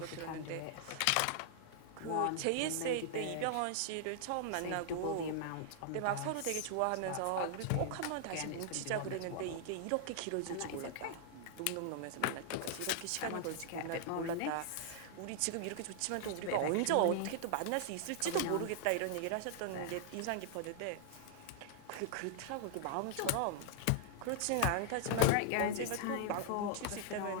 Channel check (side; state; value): both; different; correlation -0.01